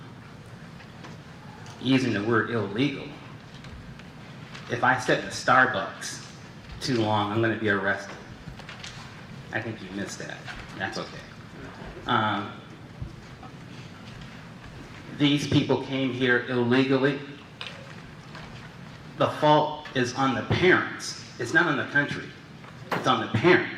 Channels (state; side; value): identical; both; correlation 1.00